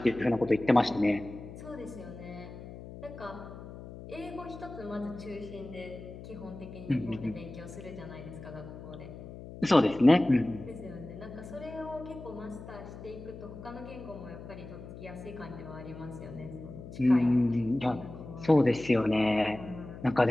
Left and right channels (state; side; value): noise; left; hum, 13 dB below the sound